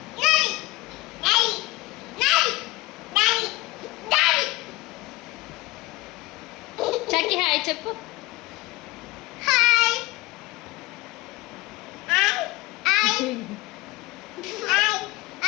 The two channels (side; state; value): right; quieter; 20.4 dB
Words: చక్కి హాయ్ చెప్పు.